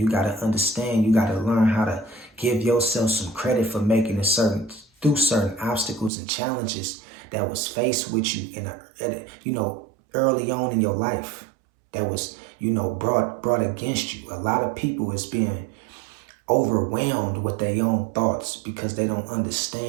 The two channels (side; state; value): left; drops out; at 6.1 s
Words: got to understand, you got to learn how to give yourself some credit for making it through certain obstacles and challenges that was faced with you you know, early on in your life, that was, you know, brought against you. A lot of people is being overwhelmed with their own thoughts because they don't